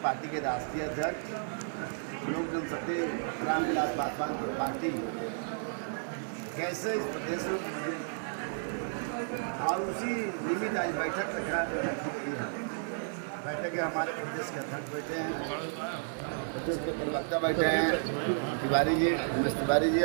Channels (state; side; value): silent; left; digital silence